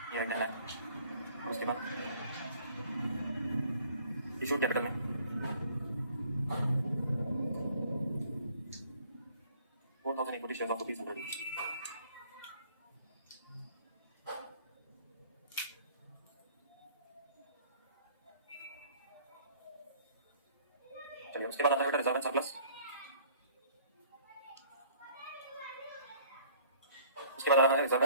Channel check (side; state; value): both; inverted; correlation -0.56